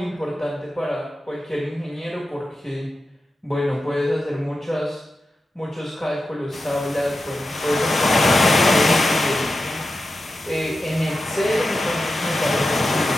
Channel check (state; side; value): normal; both; correlation 0.91